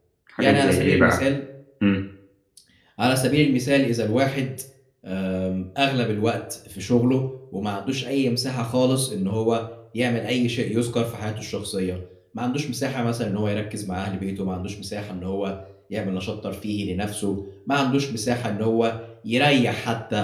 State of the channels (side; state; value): both; identical; correlation 1.00